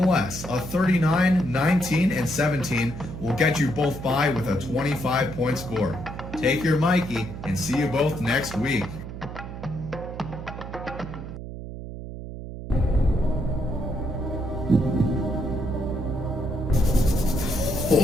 a 39, 19, and 17 will get you both by with a 25-point score. Take your Mikey and see you both next week.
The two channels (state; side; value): noise; right; hum, 10 dB below the sound